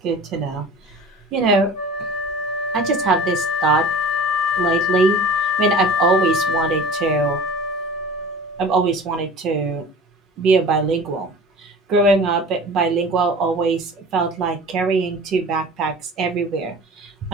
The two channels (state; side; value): normal; both; correlation 0.40